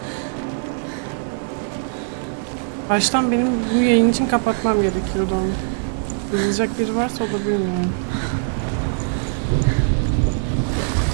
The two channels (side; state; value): left; silent; 64 dB below the other